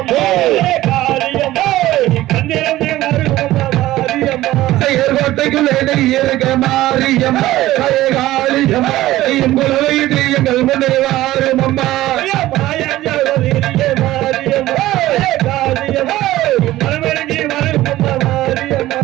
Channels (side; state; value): left; quieter; 15.9 dB